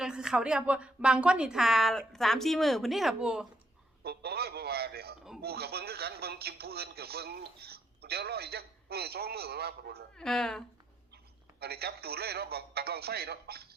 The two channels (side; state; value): both; normal; correlation 0.75